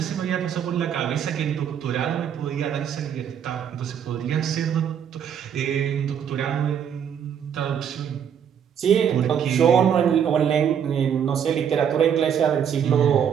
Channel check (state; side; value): quieter; left; 8.4 dB